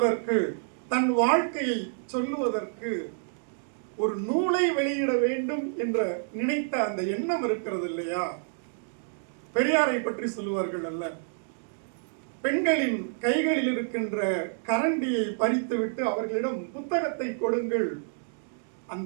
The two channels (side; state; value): left; silent; digital silence